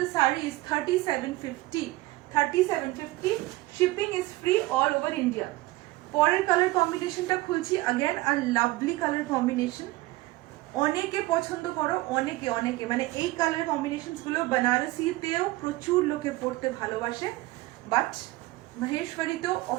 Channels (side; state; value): left; quieter; 19.3 dB